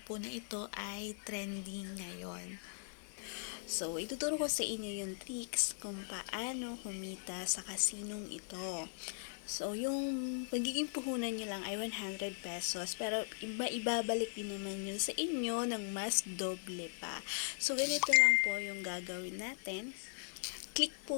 po na ito ay trending ngayon. So, ituturo ko sa inyo yung tricks kung paano kumita sa kasinong ito. So, yung magiging puhunan nyo lang ay 100 pesos, pero ibabalik din naman yun sa inyo ng mas doble pa. So, ganito lang po yung gagawin natin. Click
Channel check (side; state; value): right; silent; digital silence